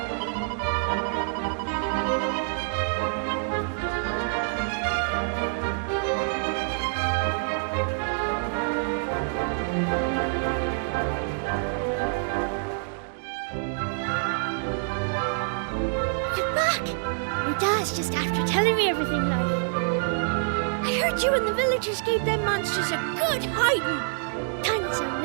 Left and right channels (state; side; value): silent; left; digital silence